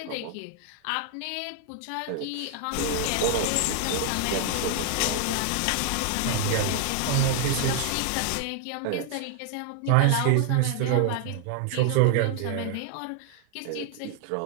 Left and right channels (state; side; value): different; both; correlation 0.00